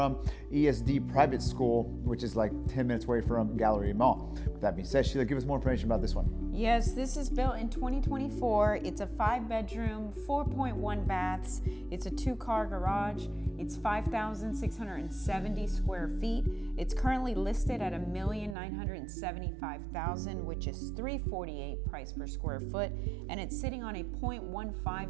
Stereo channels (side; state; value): left; drops out; at 18.6 s